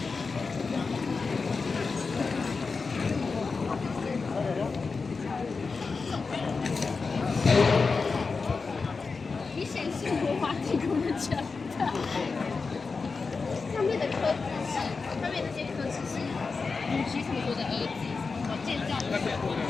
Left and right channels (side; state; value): right; quieter; 4.5 dB